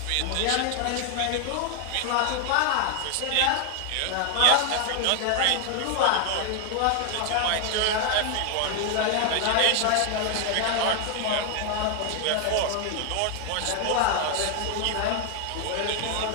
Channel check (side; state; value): both; different; correlation 0.00